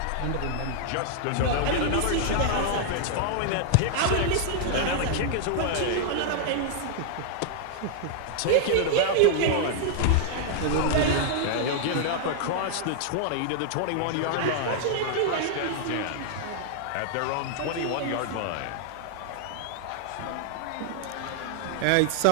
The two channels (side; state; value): both; different; correlation -0.01